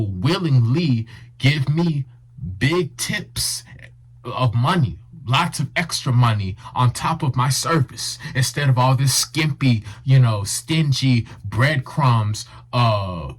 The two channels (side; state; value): both; identical; correlation 1.00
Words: willingly give me big tips of money, lots of extra money on top of my service, instead of all this skimpy, stingy breadcrumbs,